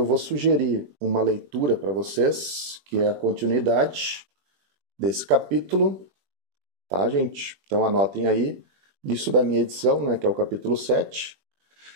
vou sugerir uma leitura para vocês, que é a continuidade desse capítulo, tá, gente? Então anotem aí, isso da minha edição, né, que é o capítulo 7,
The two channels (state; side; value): late; left; 21 ms